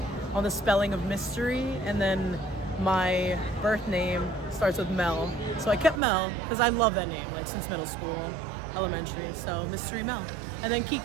on the spelling of mystery, and then my birth name starts with Mel. So I kept Mel because I love that name, like since middle school, elementary. So Mystery Mel. And then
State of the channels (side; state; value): left; drops out; at 6.0 s